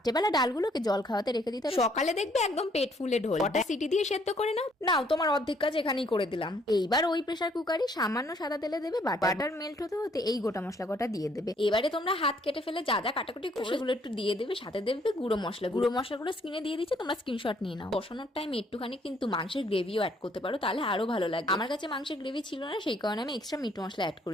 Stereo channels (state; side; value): normal; both; correlation 0.66